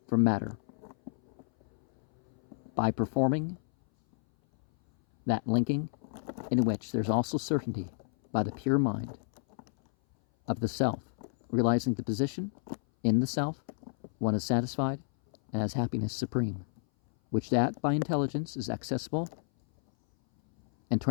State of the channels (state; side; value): silent; right; 57 dB below the other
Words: from matter by performing that linking in which there's also certainty by the pure mind of the self, realizing the position in the self, one is satisfied and has happiness supreme, which that by intelligence is accessible, and